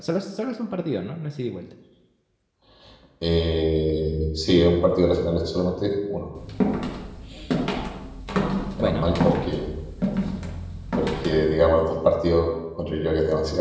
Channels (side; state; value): both; identical; correlation 1.00